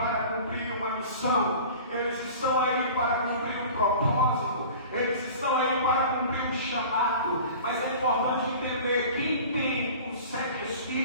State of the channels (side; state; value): both; inverted; correlation -0.41